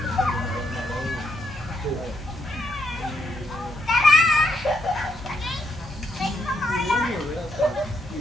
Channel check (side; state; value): both; normal; correlation 0.78